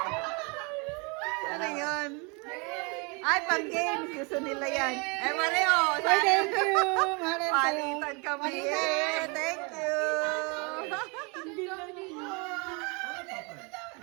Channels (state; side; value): quieter; left; 31.3 dB